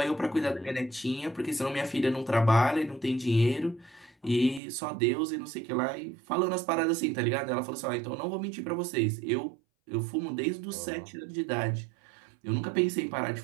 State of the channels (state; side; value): drops out; left; at 4.6 s